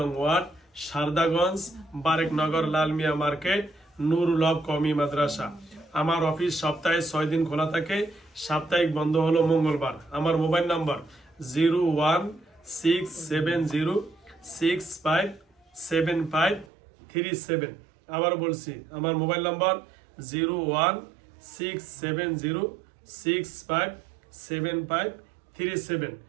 ওয়ার্ড সারদাগঞ্জ বারেকনগর লালমিয়া মার্কেট নুরুল হক কওমি মাদ্রাসা আমার অফিস সপ্তাহে 6 দিন খোলা থাকে সাপ্তাহিক বন্ধ হলো মঙ্গলবার আমার মোবাইল নাম্বার 01670657537 আবার বলছি আমার মোবাইল নাম্বার 01670657537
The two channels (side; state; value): left; drops out; at 16.7 s